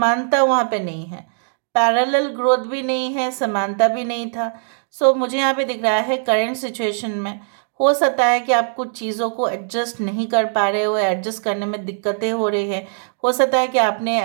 वहाँ पे नहीं है, पैरेलल ग्रोथ भी नहीं है, समानता भी नहीं था। सो मुझे यहाँ पे दिख रहा है करेंट सिचुएशन में हो सकता है कि आप कुछ चीज़ों को एडजस्ट नहीं कर पा रहे हो, एडजस्ट करने में दिक्कतें हो रही है। हो सकता है कि आपने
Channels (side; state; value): left; silent; digital silence